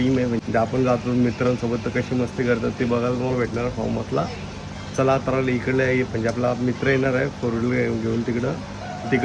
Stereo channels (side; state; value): both; identical; correlation 1.00